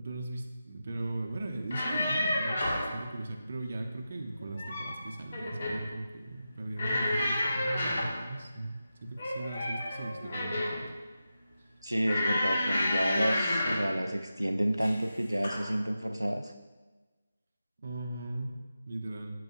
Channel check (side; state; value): both; inverted; correlation -0.90